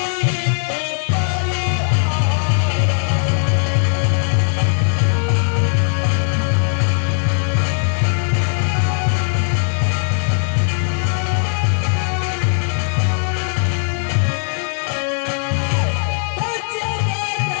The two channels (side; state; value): right; silent; digital silence